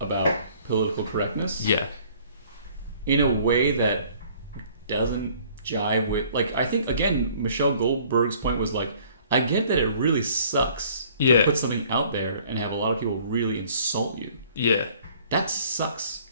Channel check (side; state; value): both; inverted; correlation -0.56